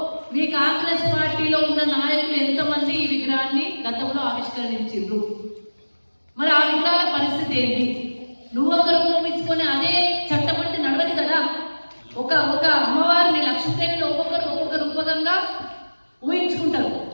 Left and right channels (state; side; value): inverted; both; correlation -1.00